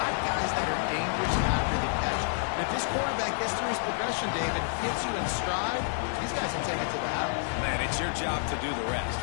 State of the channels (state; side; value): silent; right; digital silence